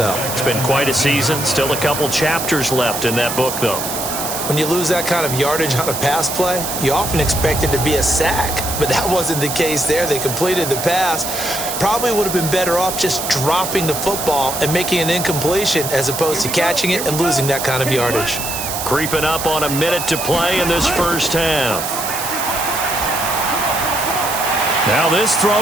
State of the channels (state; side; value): noise; right; hiss, 5 dB below the sound